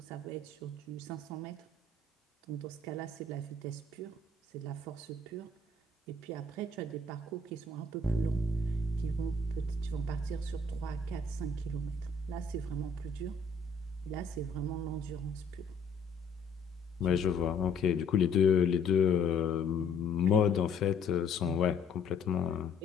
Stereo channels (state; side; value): quieter; right; 3.8 dB